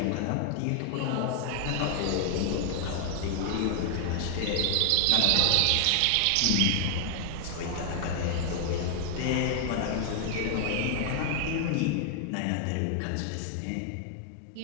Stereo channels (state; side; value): different; both; correlation 0.00